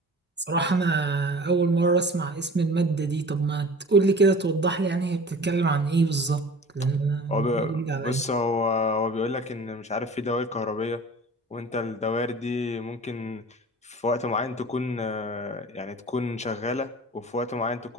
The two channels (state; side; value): normal; both; correlation 0.42